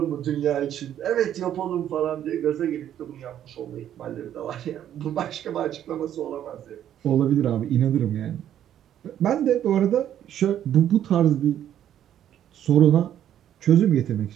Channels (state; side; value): quieter; left; 10.7 dB